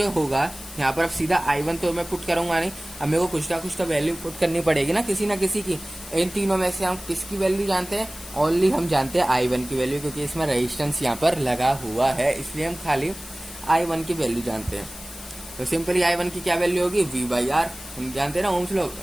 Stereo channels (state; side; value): noise; left; hiss, 14 dB below the sound